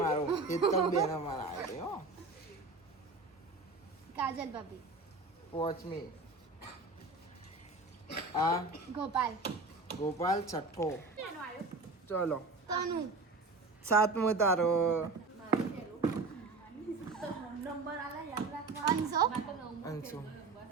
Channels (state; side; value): quieter; left; 3.6 dB